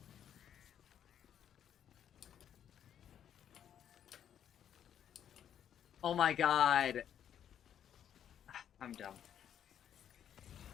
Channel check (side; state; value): right; quieter; 9.5 dB